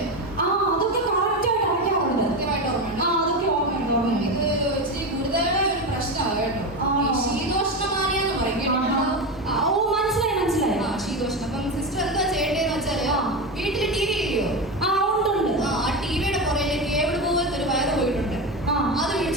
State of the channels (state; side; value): normal; both; correlation 0.18